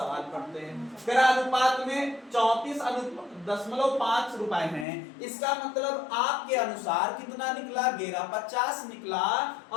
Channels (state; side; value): drops out; right; at 4.9 s